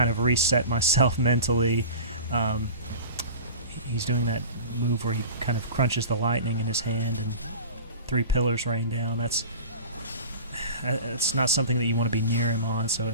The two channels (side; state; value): both; inverted; correlation -0.36